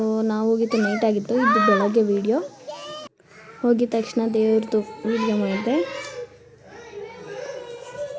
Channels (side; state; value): both; identical; correlation 1.00